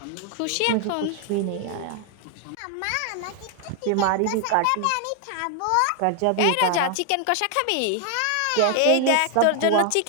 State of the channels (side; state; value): both; different; correlation 0.00